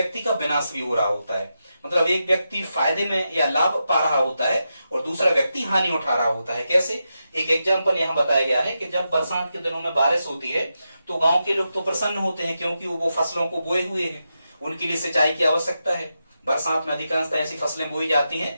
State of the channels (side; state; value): both; inverted; correlation -0.87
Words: का विनाश भी हो रहा होता है। मतलब एक व्यक्ति फायदे में या लाभ पा रहा होता है और दूसरा व्यक्ति हानि उठा रहा होता है। कैसे, एक एग्जाम्पल यहाँ बताया गया है कि जब बरसात के दिनों में बारिश होती है तो गांव के लोग तो प्रसन्न होते हैं क्योंकि वो फसलों को बोए हुए हैं, उनके लिए सिंचाई की आवश्यकता है। बरसात में अधिकांशतः ऐसी फसलें बोई जाती हैं